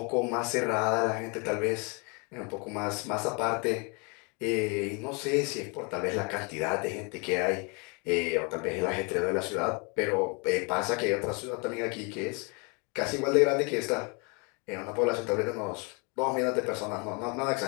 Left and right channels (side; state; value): right; quieter; 32.7 dB